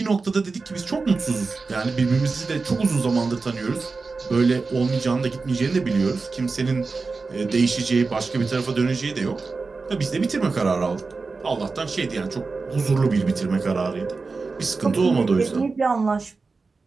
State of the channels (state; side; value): quieter; left; 4.2 dB